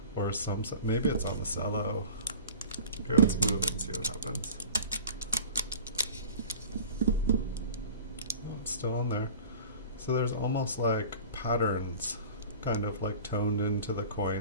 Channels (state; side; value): inverted; both; correlation -0.42